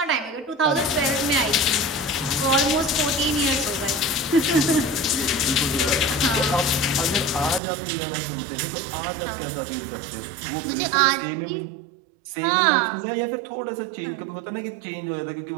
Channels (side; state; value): left; drops out; at 7.6 s